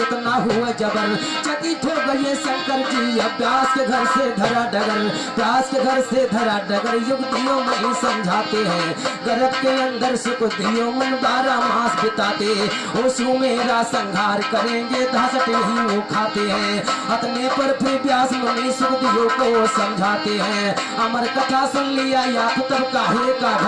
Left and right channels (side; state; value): both; identical; correlation 1.00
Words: हुए जबर। चकित हो गए शंकर जी अभ्यास के घर से धरा डगर। अभ्यास के घर से धरा डगर युक्तियों में ही समझाते हैं। गर्भ के अंदर सुख दियो मन 12 मास बिताते। ओशु मेरा संहार करेंगे धासट नहीं वो खाते हैं। अपने पर फिर व्यास मुनि सुख दियो को समझाते हैं। अमर कथा सुन लिया या तो तब काहे का